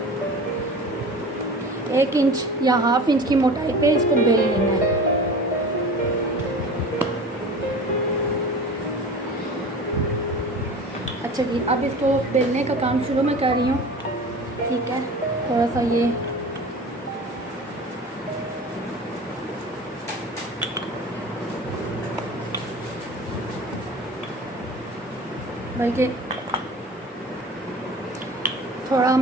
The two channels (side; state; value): both; normal; correlation 0.38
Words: 1 इंच या हाफ इंच की मोटाई पे इसको बेल लेना है। अच्छा जी, अब इसको बेलने का काम शुरू में कर रही हूँ, ठीक है। थोड़ा सा ये बल्कि थोड़ा